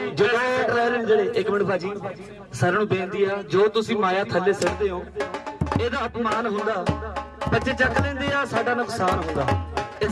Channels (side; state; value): both; identical; correlation 1.00